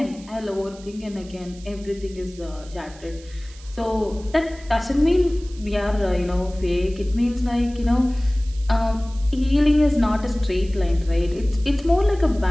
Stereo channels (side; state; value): right; noise; hiss, 22 dB below the sound